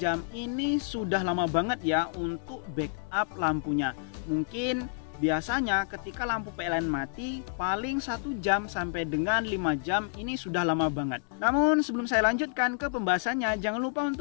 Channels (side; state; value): right; silent; digital silence